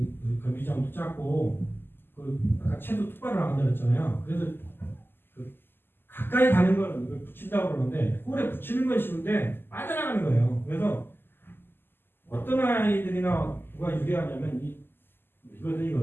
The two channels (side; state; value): right; late; 0.10 ms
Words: 경기장도 작고 아까 채도 똑바로 나간다 그랬잖아요. 그래서 가까이 가는 건 이걸 붙인다고 그러는데 홀에 붙이는 건 쉬운데 빠져나가는 거예요. 그래서 어떤 아이들이나 누가 유리하냐면